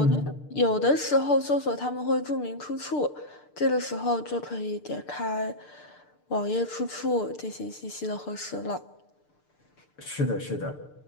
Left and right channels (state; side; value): late; right; 6.7 ms